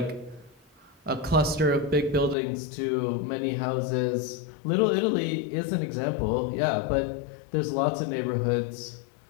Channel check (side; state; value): right; drops out; at 2.4 s